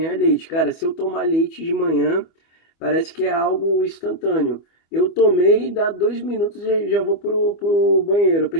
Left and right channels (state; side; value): late; right; 25 ms